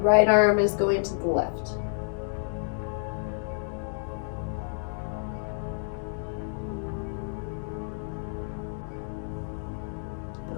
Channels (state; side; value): silent; right; digital silence